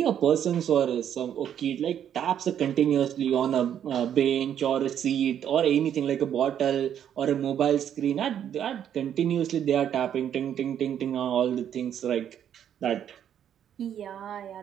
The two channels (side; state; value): left; quieter; 9.5 dB